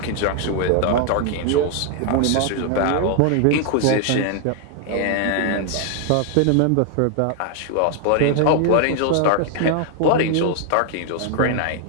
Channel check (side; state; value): both; different; correlation 0.00